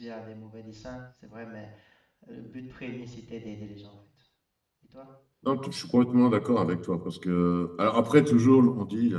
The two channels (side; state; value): both; identical; correlation 1.00